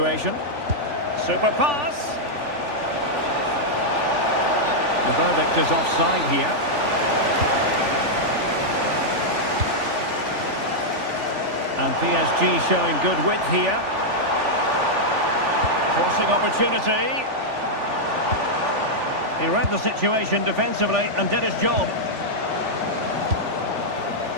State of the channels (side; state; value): left; late; 3.4 ms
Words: Super pass. The verdict is offside here. And PSG showing good width here. Crossing opportunity. He read the situation defensively and did his job.